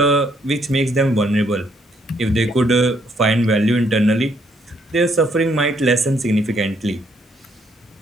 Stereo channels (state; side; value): normal; both; correlation 0.70